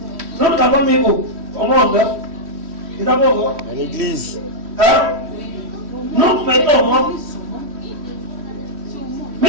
Nous avons mis où? Au monde. Nous avons où? À l'église. Hein? Nous mettons au monde.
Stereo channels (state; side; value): late; left; 3.1 ms